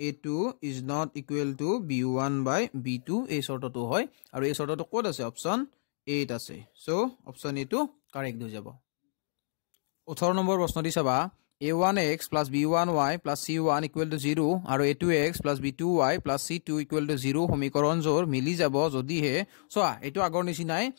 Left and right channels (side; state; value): right; silent; digital silence